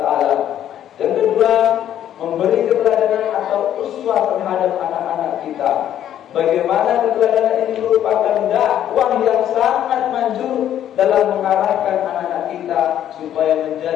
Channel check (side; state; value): right; quieter; 10.9 dB